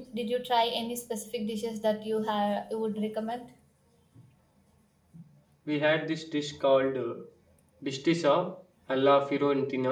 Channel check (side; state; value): both; identical; correlation 1.00